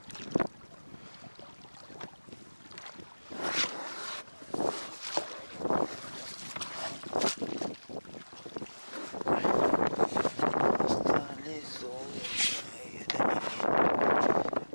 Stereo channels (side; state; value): both; inverted; correlation -1.00